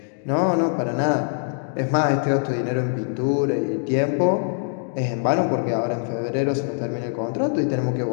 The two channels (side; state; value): right; silent; digital silence